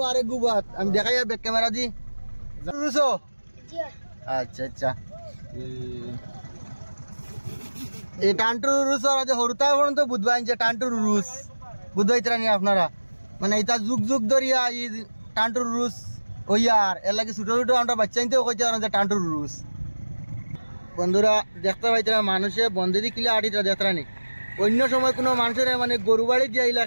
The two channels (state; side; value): inverted; both; correlation -1.00